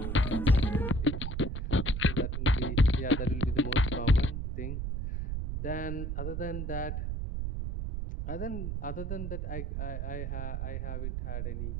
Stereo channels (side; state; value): right; noise; rumble, 3 dB below the sound